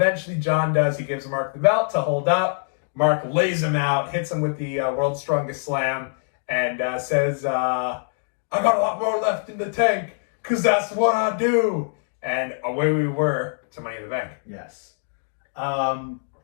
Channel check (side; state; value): right; silent; digital silence